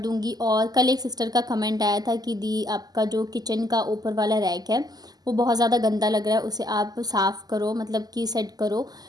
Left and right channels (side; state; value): left; late; 0.19 ms